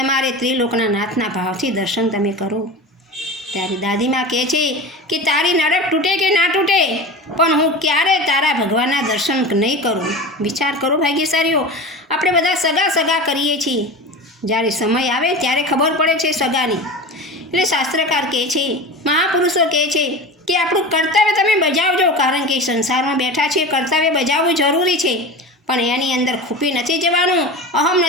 ત્રિલોકના નાથના ભાવથી દર્શન તમે કરો. ત્યારે દાદીમા કહે છે કે તારી નરક તૂટે કે ના તૂટે પણ હું ક્યારે તારા ભગવાનના દર્શન નહીં કરું. વિચાર કરો ભાગ્યશાળીઓ, આપણે બધા સગા કરીએ છીએ, જ્યારે સમય આવે ત્યારે ખબર પડે છે સગાની. એટલે શાસ્ત્રકાર કહે છે, મહાપુરુષો કહે છે કે આપણું કર્તવ્ય તમે બજાવજો, કારણ કે સંસારમાં બેઠા છીએ, કર્તવ્ય બજાવવું જરૂરી છે, પણ એની અંદર ખૂપી નથી જવાનું, અહમ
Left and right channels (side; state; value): both; normal; correlation 0.30